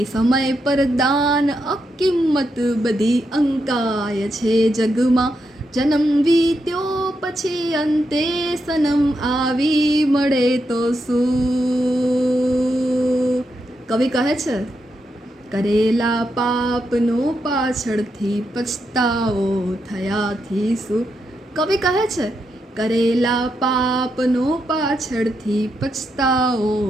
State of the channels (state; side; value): normal; both; correlation 0.83